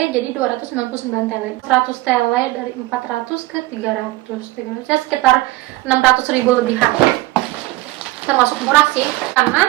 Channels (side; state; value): left; quieter; 19.1 dB